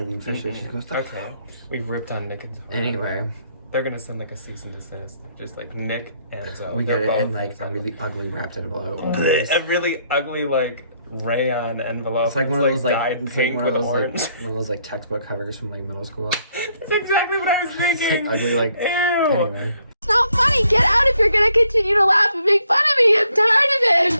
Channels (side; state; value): both; inverted; correlation -0.71